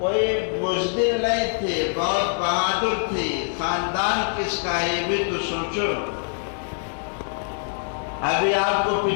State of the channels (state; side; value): silent; right; 59 dB below the other